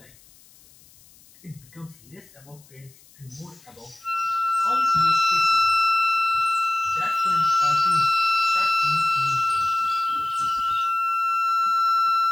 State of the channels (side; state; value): left; noise; hiss, 27 dB below the sound